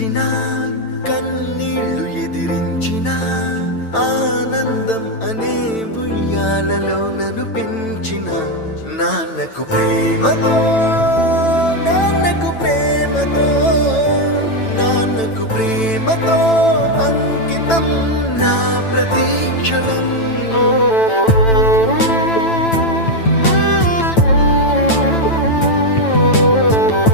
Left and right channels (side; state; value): right; late; 9.0 ms